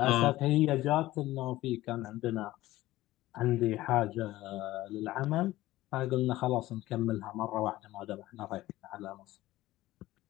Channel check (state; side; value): quieter; right; 16.6 dB